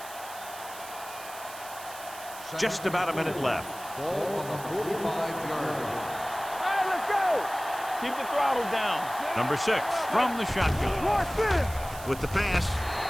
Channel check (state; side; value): noise; right; hiss, 15 dB below the sound